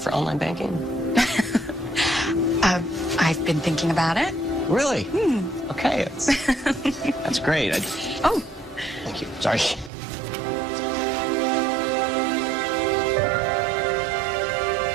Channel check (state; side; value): drops out; left; at 9.9 s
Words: online banking? I've been thinking about it. Really? Okay, that's great. Oh. Thank you. Sorry.